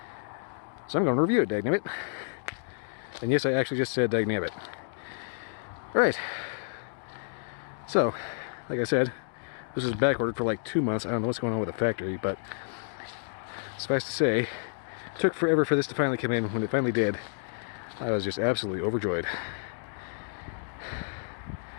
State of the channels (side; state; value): right; silent; digital silence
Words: So I'm going to review it, dagnabbit. And yes, I actually just said dagnabbit. Alright. So, like I said, this was back ordered for like 2 months. I don't know what's going on with the factory, but suffice to say, it took forever for this to finally come in. When it finally did, I was just absolutely overjoyed.